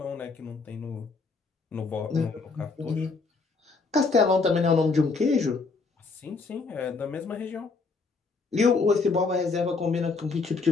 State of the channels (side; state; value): right; quieter; 4.3 dB